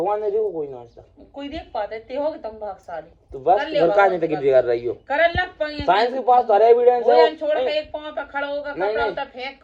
ने देखो कोई नाश्ता कोई देख पाते थे हो तुम भागशाली तो बस घर का नहीं तक कर रही हो कर लग पाएंगे साइंस के पास तो एविडेंस है छोड़ के एक पांव पे खड़ा होगा कपड़ा उतार फेंक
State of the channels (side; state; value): both; identical; correlation 1.00